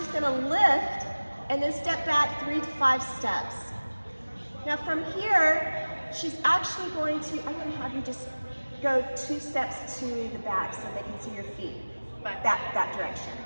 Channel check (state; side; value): inverted; both; correlation -1.00